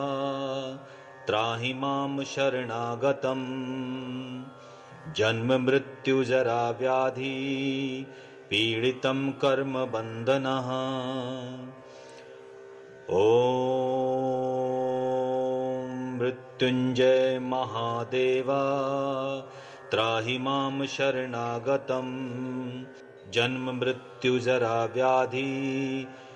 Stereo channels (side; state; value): both; identical; correlation 1.00